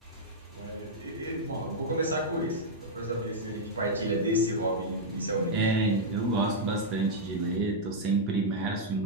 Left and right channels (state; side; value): normal; both; correlation -0.05